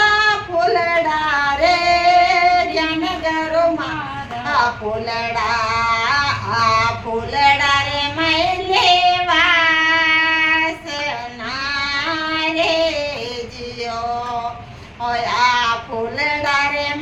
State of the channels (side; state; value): both; identical; correlation 1.00